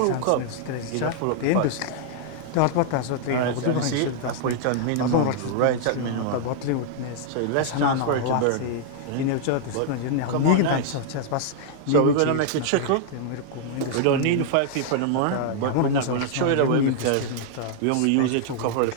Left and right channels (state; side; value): different; both; correlation -0.01